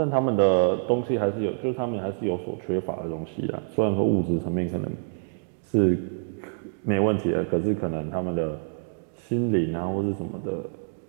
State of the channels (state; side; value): silent; left; digital silence